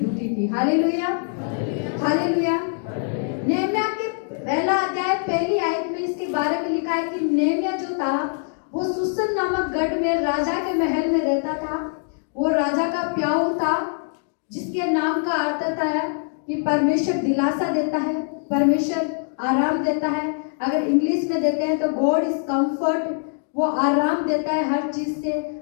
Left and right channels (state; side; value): silent; right; 63 dB below the other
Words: थी। Hallelujah, hallelujah. नेहमिया के पहला अध्याय पहली आयत में इसके बारे में है कि नेमिया जो था वो सुसन नामक गढ़ में राजा के महल में रहता था। वो राजा का प्याऊ था, जिसके नाम का अर्थ है कि परमेश्वर दिलासा देता है, परमेश्वर आराम देता है। अगर इंग्लिश में देते हैं तो गॉड इज कंफर्ट, वो आराम देता है हर चीज से,